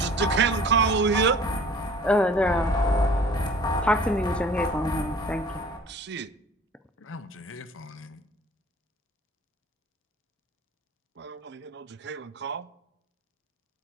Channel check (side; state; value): both; normal; correlation 0.48